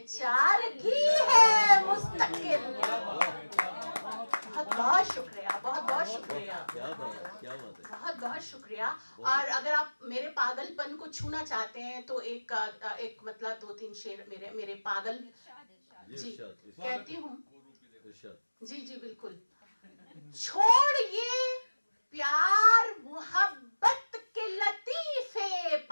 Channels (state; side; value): inverted; both; correlation -1.00